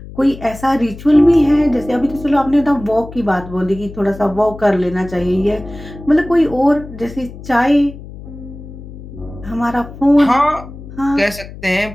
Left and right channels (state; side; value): noise; left; hum, 15 dB below the sound